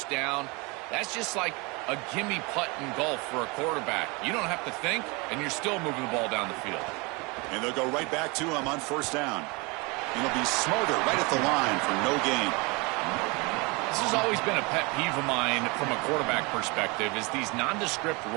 down. That's just like a gimme putt in golf for a quarterback. You don't have to think, and you're still moving the ball down the field. And they'll go right back to him on first down. And he'll be smarter right at the line for no gain. This has always been a pet peeve of mine from a quarterback perspective is these nondescript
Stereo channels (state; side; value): quieter; left; 27.6 dB